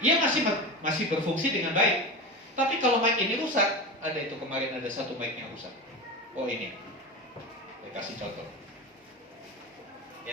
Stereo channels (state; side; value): normal; both; correlation 0.24